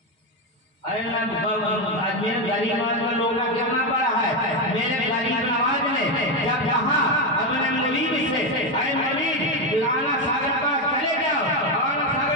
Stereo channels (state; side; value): normal; both; correlation 0.09